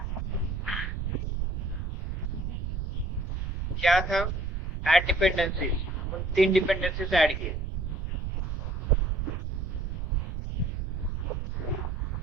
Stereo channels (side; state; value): right; noise; rumble, 2 dB below the sound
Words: क्या था, ऐड डिपेंडेंसीज, उन 3 डिपेंडेंसीज ऐड किए।